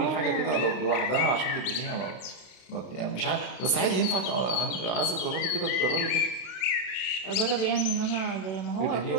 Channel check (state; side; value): late; right; 32 ms